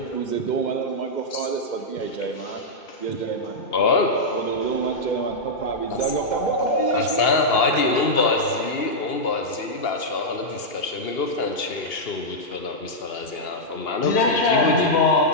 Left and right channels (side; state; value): right; late; 2.8 ms